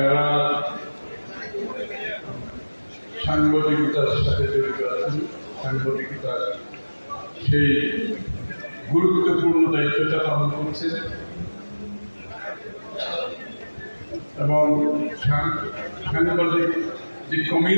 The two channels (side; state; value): both; inverted; correlation -1.00